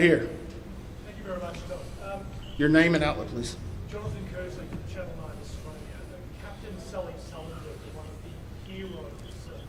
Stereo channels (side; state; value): both; identical; correlation 1.00